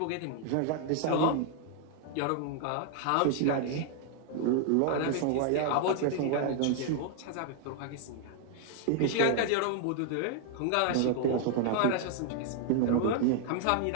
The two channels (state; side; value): different; both; correlation 0.00